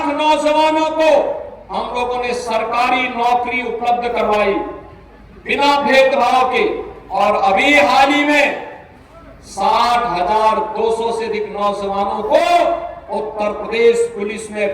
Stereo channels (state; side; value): identical; both; correlation 1.00